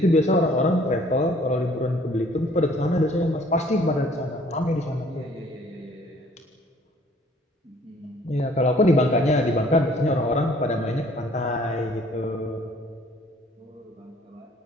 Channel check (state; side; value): normal; both; correlation 0.57